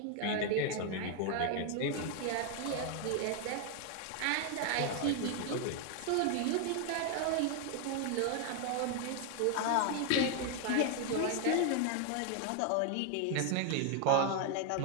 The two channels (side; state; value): both; different; correlation 0.00